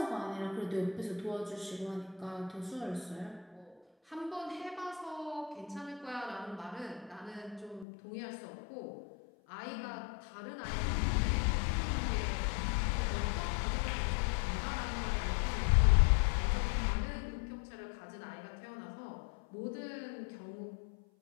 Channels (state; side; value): drops out; right; at 7.9 s